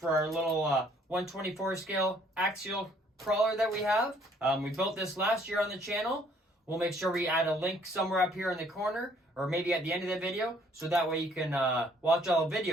our little 124 scale axial crawler that we have. We built this last year on the channel. We'll make sure we add a link somewhere up here in the corner, or maybe at the end of the video, so that way you can watch all the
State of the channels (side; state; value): both; normal; correlation 0.62